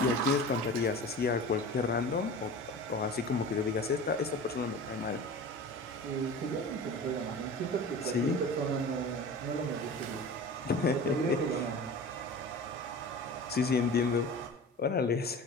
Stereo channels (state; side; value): normal; both; correlation 0.36